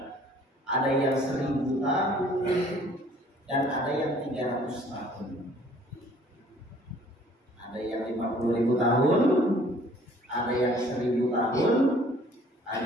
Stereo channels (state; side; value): normal; both; correlation 0.56